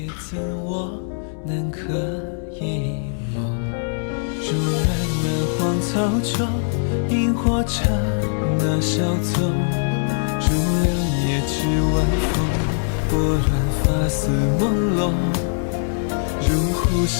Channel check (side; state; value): right; silent; digital silence